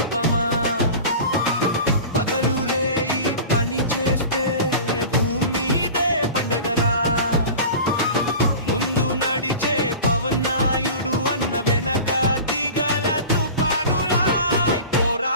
పగలు రేయి పని చేస్తే ముందు నడిచే పవన్నాయుడు అన్న వెనక దిగల తుపానులా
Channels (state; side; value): inverted; both; correlation -0.36